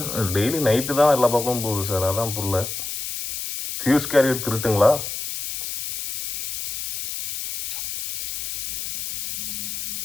டெய்லி நைட்டு தான் எல்லா பக்கமும் போகுது சார், அதான் புரியல. ஃபியூஸ் கேரியர் திருட்டுங்களா?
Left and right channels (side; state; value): left; noise; hiss, 4 dB below the sound